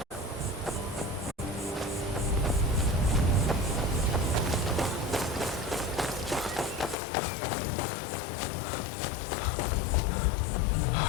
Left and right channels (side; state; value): right; drops out; at 7.0 s